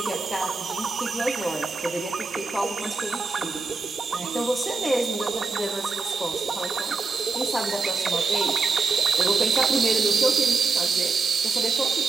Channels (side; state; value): left; quieter; 4.1 dB